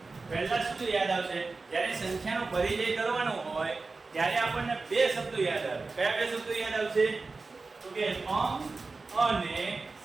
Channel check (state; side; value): quieter; left; 3.9 dB